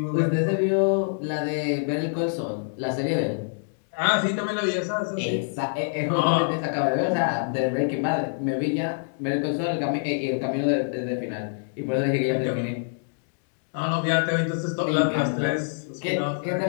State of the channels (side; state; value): right; silent; digital silence